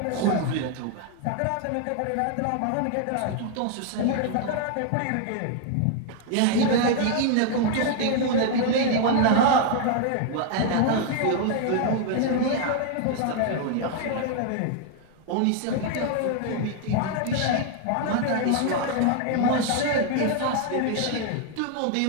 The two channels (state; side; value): different; both; correlation 0.00